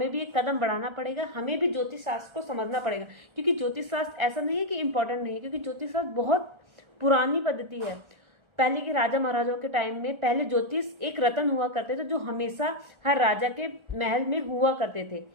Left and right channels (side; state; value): left; late; 1.3 ms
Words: भी एक कदम बढ़ाना पड़ेगा, हमें भी ज्योतिष शास्त्र को समझना पड़ेगा। क्योंकि ज्योतिष शास्त्र ऐसा नहीं है कि इंपॉर्टेंट नहीं है, क्योंकि ज्योतिष शास्त्र बहुत पुरानी पद्धति है। पहले के राजा महाराजाओं के टाइम में पहले ज्योतिष एक रत्न हुआ करते थे जो हमेशा हर राजा के महल में हुआ करते थे।